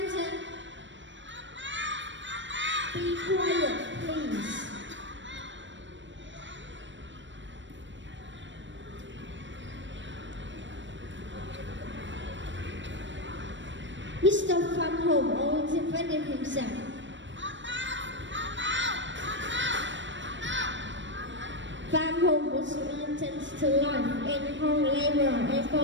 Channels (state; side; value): late; left; 0.54 ms